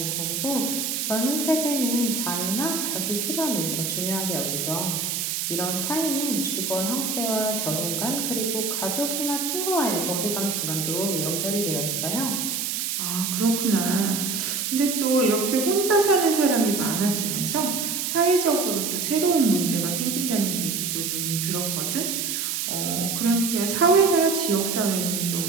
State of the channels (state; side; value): noise; right; hiss, 1 dB below the sound